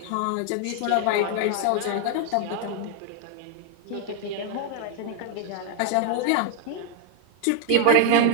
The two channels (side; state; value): both; different; correlation 0.00